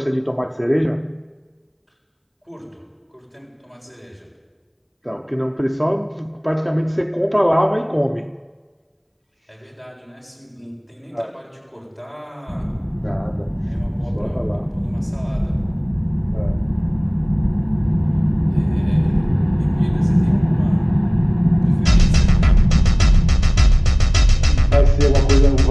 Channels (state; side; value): identical; both; correlation 1.00